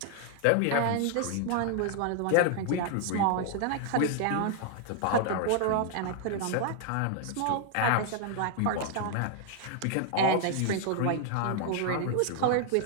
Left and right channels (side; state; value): both; different; correlation 0.00